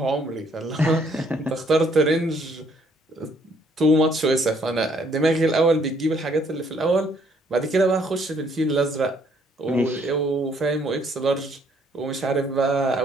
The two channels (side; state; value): both; normal; correlation 0.66